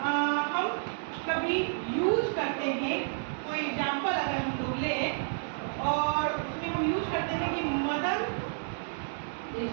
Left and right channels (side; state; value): left; silent; digital silence